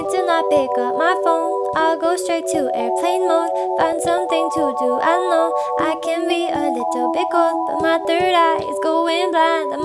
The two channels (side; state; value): both; identical; correlation 1.00